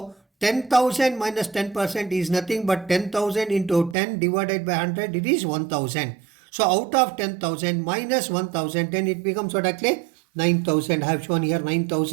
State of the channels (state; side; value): drops out; left; at 4.0 s